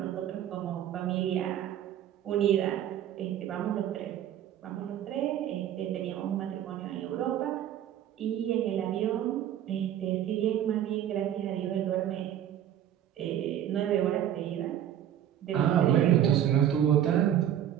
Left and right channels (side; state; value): left; quieter; 10.8 dB